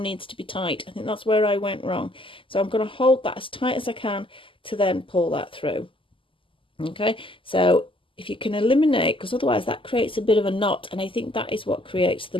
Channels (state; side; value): late; right; 0.25 ms